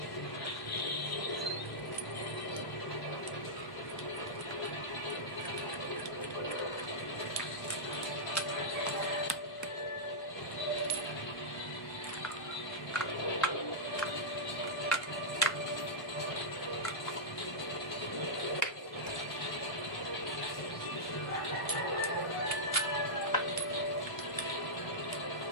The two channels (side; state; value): right; late; 1.1 ms